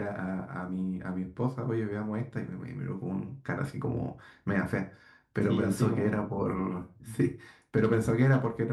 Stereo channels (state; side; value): identical; both; correlation 1.00